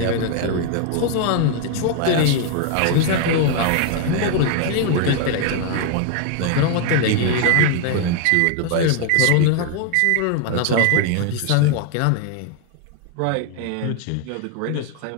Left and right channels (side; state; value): both; different; correlation 0.00